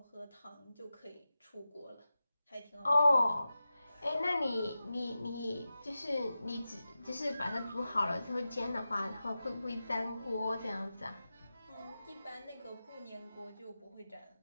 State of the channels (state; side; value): inverted; both; correlation -0.93